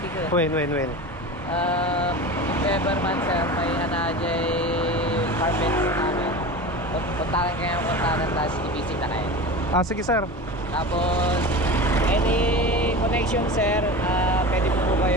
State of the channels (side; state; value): both; normal; correlation 0.30